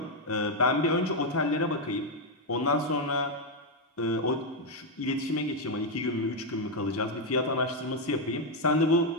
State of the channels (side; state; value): both; normal; correlation 0.02